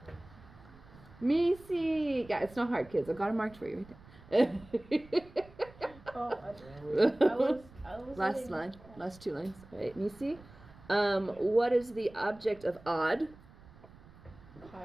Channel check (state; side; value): noise; right; rumble, 22 dB below the sound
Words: Misi. Yeah, it's not hard, kids. I've got it marked for you right there. Oh, I was Last letting- line, last two lines. All right, Misi. What is the object of odd?